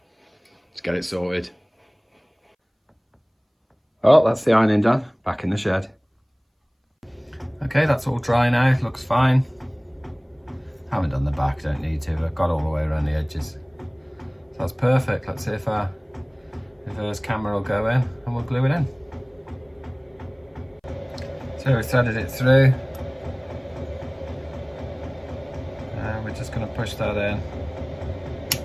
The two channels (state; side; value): identical; both; correlation 1.00